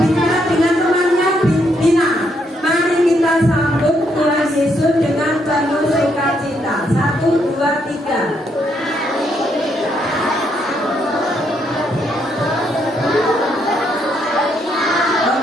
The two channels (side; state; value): both; normal; correlation 0.75